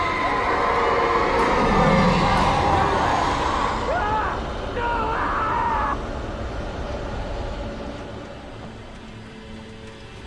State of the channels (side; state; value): both; identical; correlation 1.00